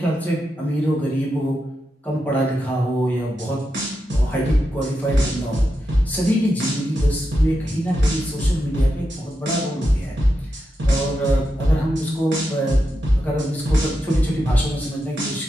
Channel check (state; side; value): normal; both; correlation 0.87